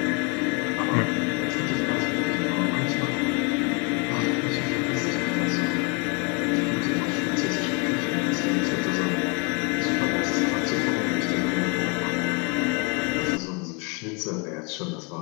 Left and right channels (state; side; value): quieter; right; 32.6 dB